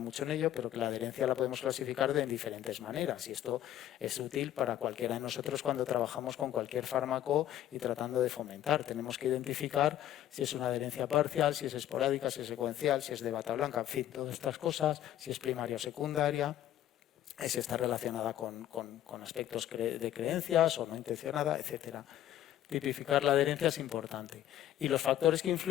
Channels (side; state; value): right; quieter; 12.2 dB